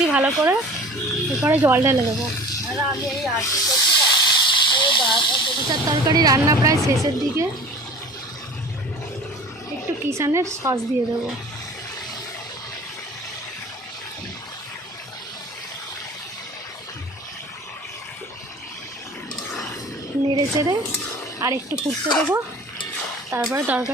ভালো করে, এরপরে জল ঢেলে দেবো। মোচার তরকারি রান্না প্রায় শেষের দিকে, একটু কিষানের সস দিয়ে দেবো। নেড়ে চেড়ে আর একটু ফুটতে দেবো, তারপরে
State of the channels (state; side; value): normal; both; correlation 0.41